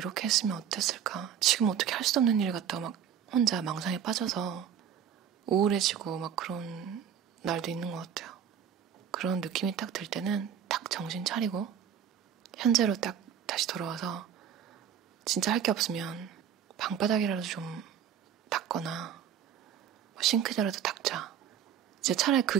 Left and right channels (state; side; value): quieter; left; 8.7 dB